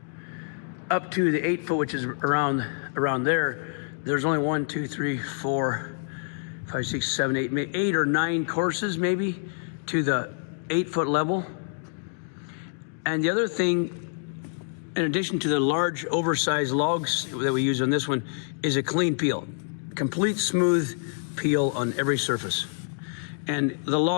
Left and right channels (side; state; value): right; silent; digital silence